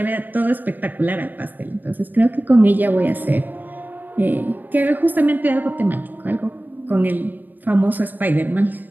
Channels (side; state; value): left; late; 0.089 ms